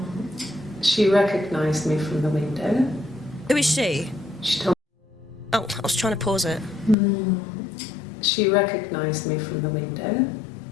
She recognised me from the window. Who is she? She told Oh, I was trying to pause it. She recognised me from the window.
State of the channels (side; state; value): right; drops out; at 7.0 s